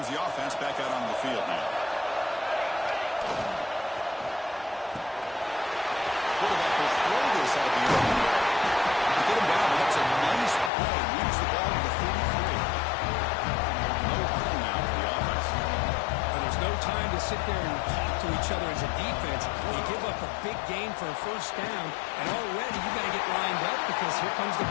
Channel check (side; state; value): right; drops out; at 10.7 s